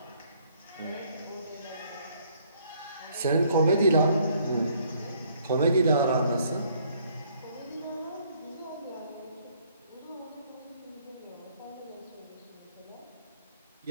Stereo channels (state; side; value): inverted; both; correlation -0.64